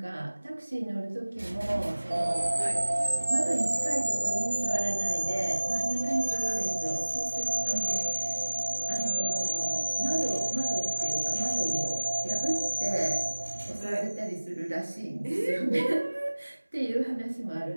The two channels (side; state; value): both; inverted; correlation -1.00